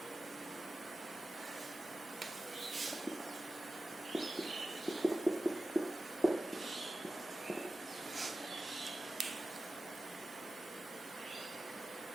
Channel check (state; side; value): normal; both; correlation 0.94